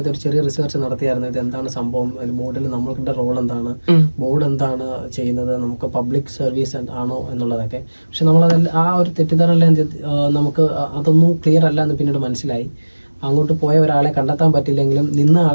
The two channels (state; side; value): inverted; both; correlation -1.00